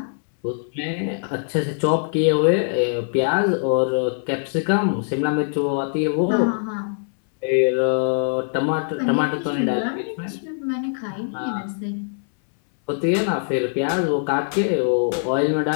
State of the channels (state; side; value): silent; right; 64 dB below the other